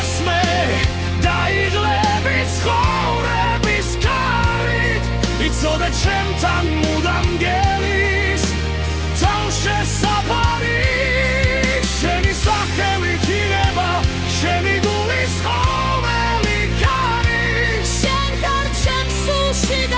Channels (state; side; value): identical; both; correlation 1.00